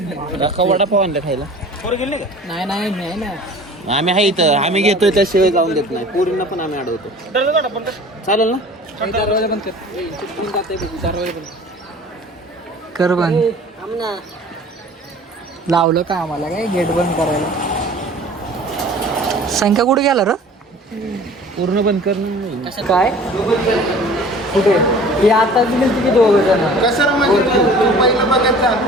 काका वडापाव आणलं खायला. नाही नाही नाही ना आम्ही आहे इथं आम्ही घेतोय त्याशिवाय जाऊन देत नाही पूर्ण पण आम्ही अडवतो. चालेल ना? दरवाजा बंद कर दरवाजा बंद कर बंद लावलं का आम्हाला काय गेट बंद करायला संख्या कुठे गेला र पूर्ण बंद कर काय कुठे हे आता दिले की दोघं जण कसं रे म्हणजे तू पहिलं बघत जा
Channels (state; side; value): normal; both; correlation 0.45